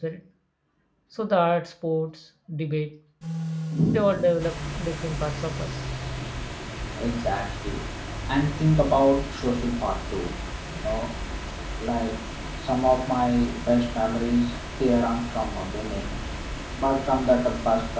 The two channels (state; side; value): identical; both; correlation 1.00